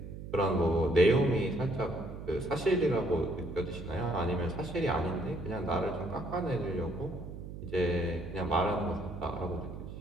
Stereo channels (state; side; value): noise; right; hum, 10 dB below the sound